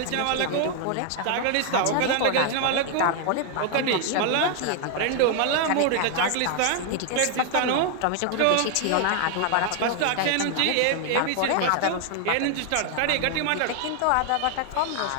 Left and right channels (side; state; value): both; different; correlation 0.00